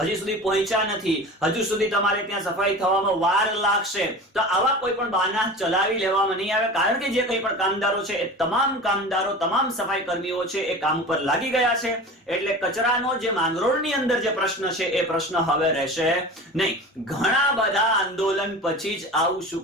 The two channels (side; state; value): both; normal; correlation 0.34